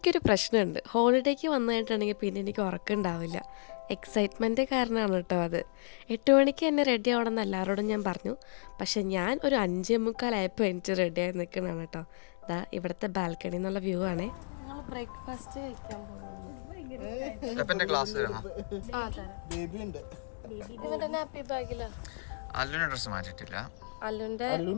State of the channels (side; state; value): right; silent; digital silence